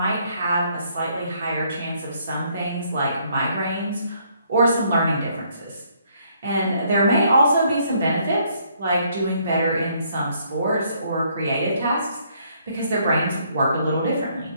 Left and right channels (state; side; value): inverted; both; correlation -0.68